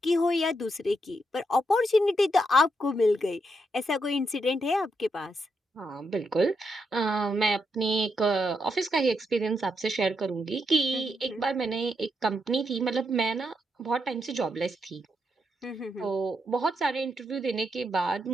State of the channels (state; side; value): normal; both; correlation 0.81